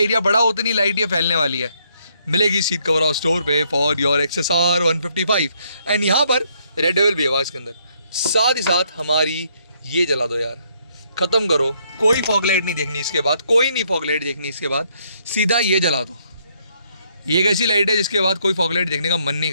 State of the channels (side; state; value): both; inverted; correlation -0.71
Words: बड़ा उतनी लाइट ये फैलने वाली है। मिलेगी सीट कवर हाउस स्टोर पे फॉर योर XSR 155। एंड यहाँ पर रेड डेविल भी है इसके अंदर। साथ ही साथ हमारी ये जला दो यार, ख़त्म करो, कोई फॉग लाइट नहीं देखनी इसके बाद, कोई नहीं फॉग लाइट देखनी इसके बाद, सीधा ये जला दो। ये एक ऐसी लाइट है जिसके बाद कोई फॉग लाइट देखने का मन नहीं